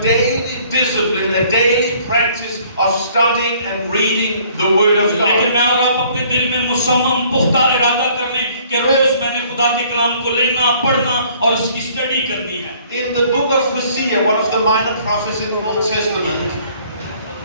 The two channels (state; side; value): inverted; both; correlation -0.58